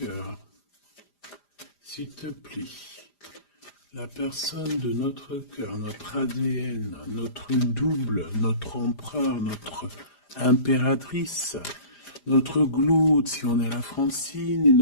s'il te plaît. La personne de notre cœur, notre ADN, notre double, notre empereur, notre impératrice, notre Glaude si on est la Francine, et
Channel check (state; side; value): late; right; 5.0 ms